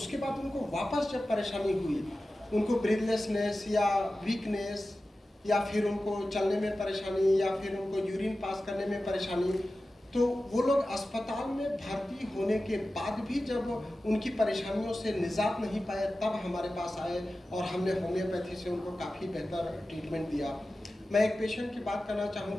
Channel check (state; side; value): normal; both; correlation 0.95